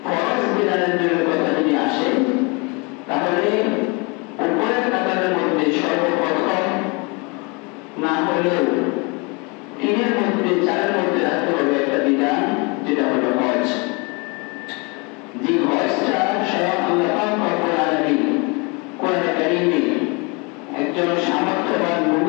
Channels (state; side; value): quieter; right; 30.1 dB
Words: ফরজ বিধানের জন্য কথা যদি আসে, তাহলে উপরের কাতারের মধ্যে সর্বপ্রথম না হলেও তিনের মধ্যে চারের মধ্যে রাখতে হবে একটা বিধান, যেটা হলো হজ। যে হজটা স্বয়ং আল্লাহ রব্বুল আলামিন কোরআনে কারীমে একজন সামর্থ্যবান